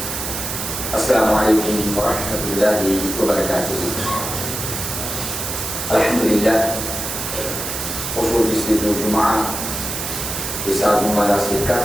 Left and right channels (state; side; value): noise; right; hiss, 4 dB below the sound